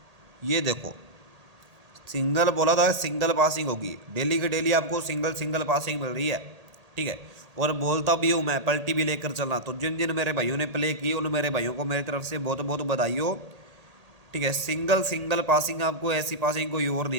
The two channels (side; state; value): left; late; 1.8 ms